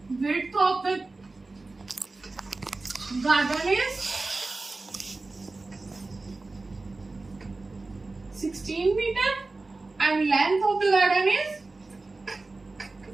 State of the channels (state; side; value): quieter; left; 3.4 dB